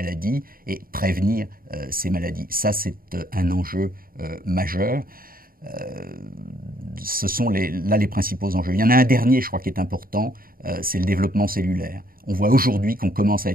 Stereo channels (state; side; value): late; left; 0.42 ms